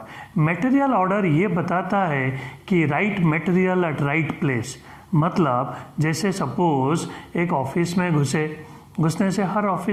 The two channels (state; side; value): identical; both; correlation 1.00